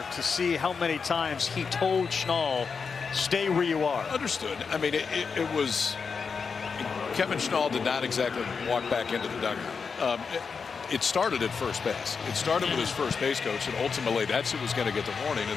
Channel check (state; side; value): quieter; right; 5.5 dB